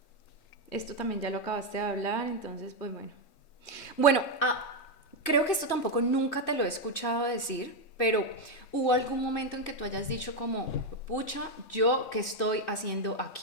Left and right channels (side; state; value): right; late; 3.2 ms